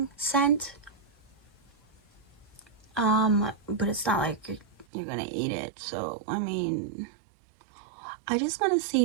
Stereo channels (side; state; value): left; drops out; at 4.9 s